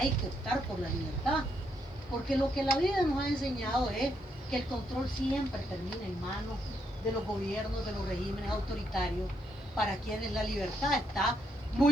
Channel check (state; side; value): normal; both; correlation 0.77